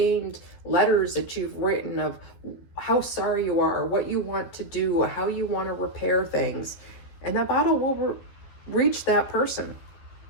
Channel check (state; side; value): late; right; 12 ms